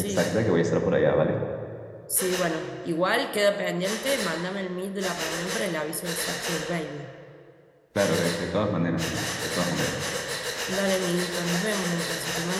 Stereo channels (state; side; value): identical; both; correlation 1.00